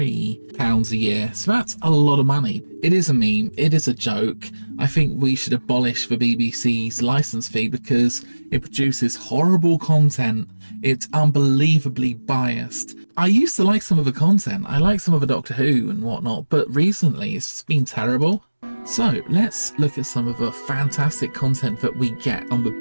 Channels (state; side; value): inverted; both; correlation -1.00